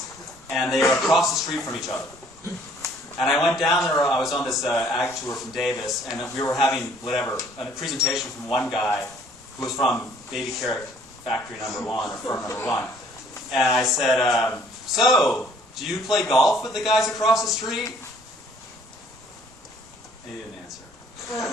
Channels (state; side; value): normal; both; correlation 0.59